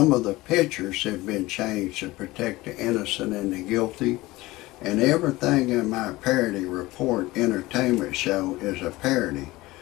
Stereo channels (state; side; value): quieter; right; 19.5 dB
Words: of the pictures have been changed to protect the innocent and the guilty. And everything in my parody report entertainment show is a parody.